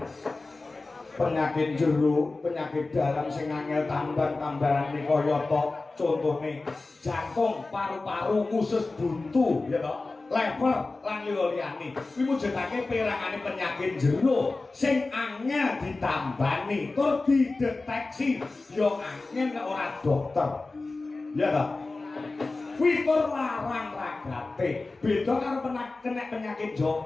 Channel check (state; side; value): quieter; right; 3.4 dB